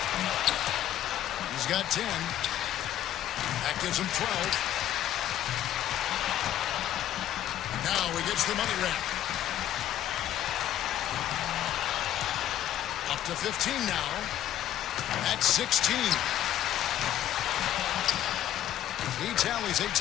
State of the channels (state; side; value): quieter; right; 11.9 dB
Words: He's got 10. That gives him 12. Now he gets the money rack. Up to 15 now. That's 16. He tallies